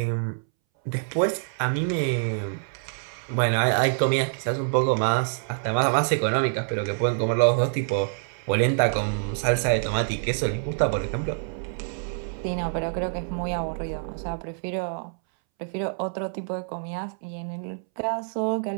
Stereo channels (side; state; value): left; silent; 61 dB below the other